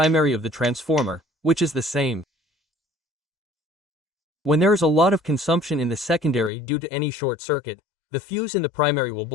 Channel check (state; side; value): drops out; right; at 6.5 s